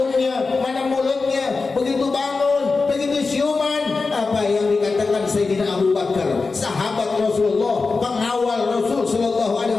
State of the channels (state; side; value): quieter; right; 4.1 dB